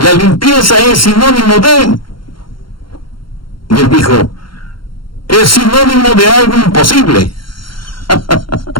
limpieza es sinónimo de... Y él dijo: es sinónimo de algo imposible.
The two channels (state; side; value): late; right; 0.73 ms